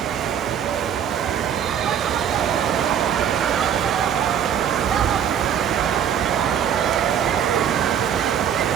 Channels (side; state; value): left; quieter; 8.8 dB